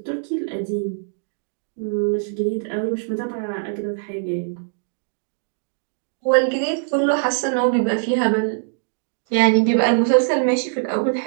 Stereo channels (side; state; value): left; silent; digital silence